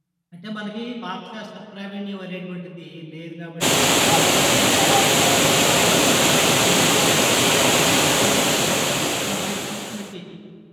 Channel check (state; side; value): identical; both; correlation 1.00